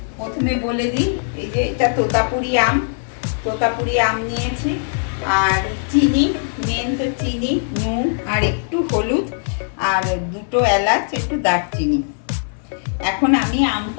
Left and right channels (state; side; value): silent; right; 63 dB below the other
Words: প্রথমে বলে দিই। এই যে এটা তোতাপুরি আম নিয়েছি, আর চিনি, মেন তো চিনি, নুন আর একটু হলুদ আর দুটো এলাচ, একটু দারচিনি। এখন আমি